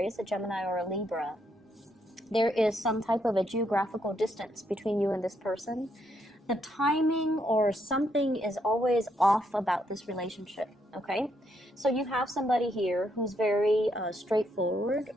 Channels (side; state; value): both; normal; correlation 0.76